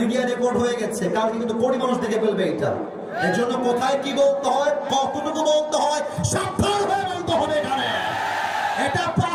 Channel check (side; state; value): both; identical; correlation 1.00